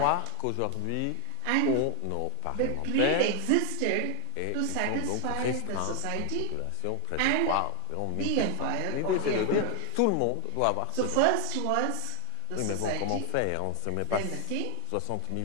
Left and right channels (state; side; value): different; both; correlation 0.01